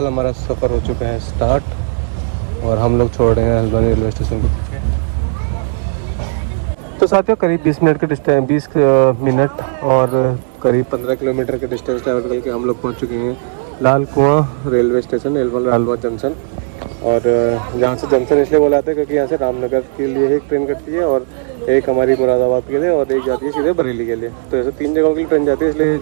हमारा सफ़र हो चुका है स्टार्ट और हम लोग छोड़ रहे हैं हल्द्वानी रेलवे स्टेशन को पीछे। तो साथियों करीब 20 मिनट का डिस्टेंस, 20 मिनट और करीब 15 किलोमीटर का डिस्टेंस ट्रैवल करके हम लोग पहुंच चुके हैं लाल कुआं रेलवे स्टेशन, लालबाग जंक्शन। और यहाँ से जंक्शन इसलिए बोला जाता है क्योंकि यहाँ से रामनगर के लिए एक ट्रेन कटती है और एक हमारी मुरादाबाद के लिए और एक जाती है सीधे बरेली के लिए। तो ऐसे 3 जगहों के लिए ट्रेन जाती है, इसलिए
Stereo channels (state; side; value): silent; left; digital silence